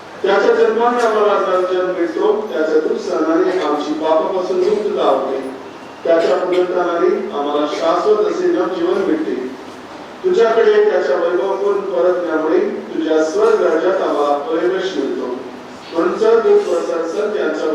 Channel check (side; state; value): both; identical; correlation 1.00